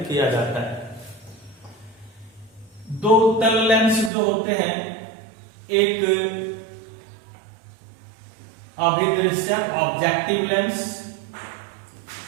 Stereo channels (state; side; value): drops out; left; at 4.1 s